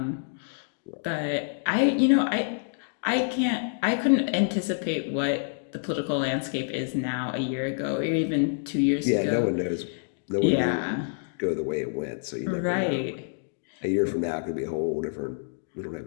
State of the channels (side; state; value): right; silent; digital silence